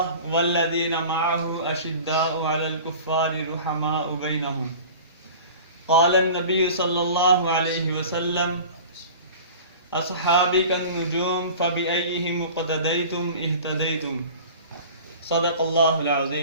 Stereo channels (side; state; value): both; inverted; correlation -0.40